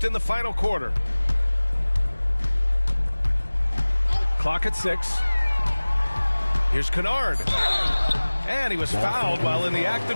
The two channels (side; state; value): both; inverted; correlation -1.00